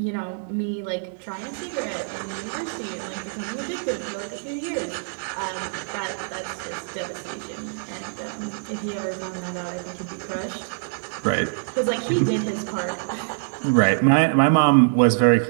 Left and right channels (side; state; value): left; silent; 62 dB below the other